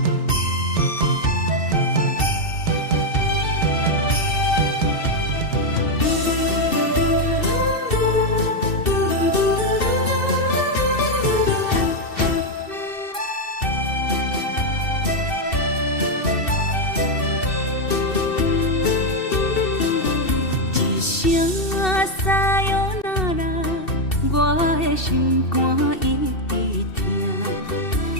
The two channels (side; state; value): right; late; 2.7 ms